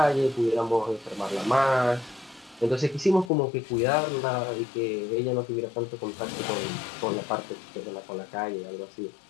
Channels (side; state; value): right; drops out; at 3.3 s